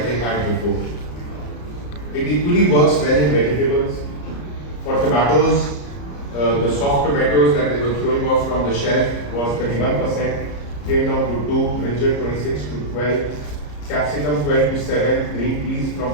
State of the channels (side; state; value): right; late; 34 ms